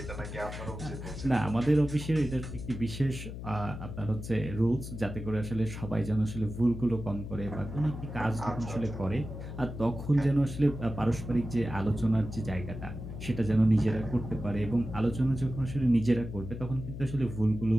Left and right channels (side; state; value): left; noise; hum, 9 dB below the sound